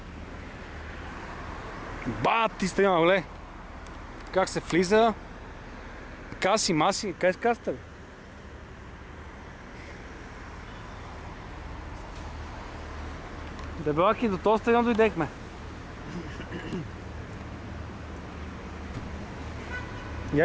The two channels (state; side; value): identical; both; correlation 1.00